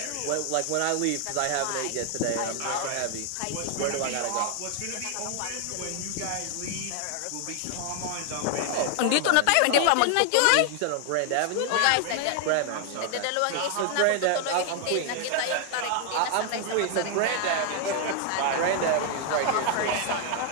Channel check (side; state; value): both; different; correlation 0.00